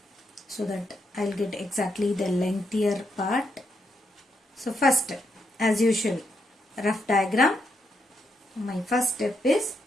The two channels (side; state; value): both; normal; correlation 0.80